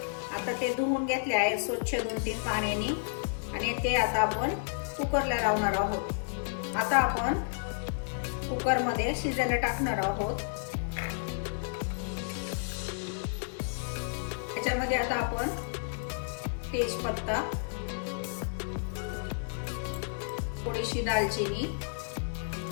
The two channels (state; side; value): silent; right; digital silence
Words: आता ते धुवून घेतले आहे स्वच्छ 2-3 पाण्याने आणि ते आता आपण कुकरला लावणार आहोत। आता आपण कुकर मध्ये शिजायला टाकणार आहोत। त्याच्यामध्ये आता आपण तेजपत्ता, थोडीशी दालचिनी,